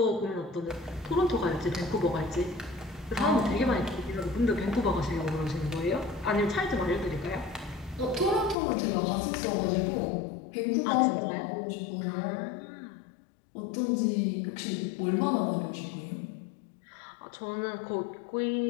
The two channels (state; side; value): drops out; right; at 8.6 s